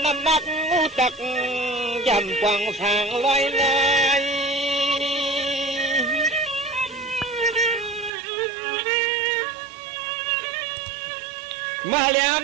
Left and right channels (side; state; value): left; drops out; at 8.1 s